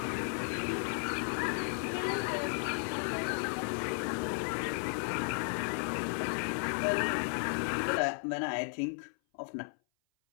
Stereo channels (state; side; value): silent; right; 55 dB below the other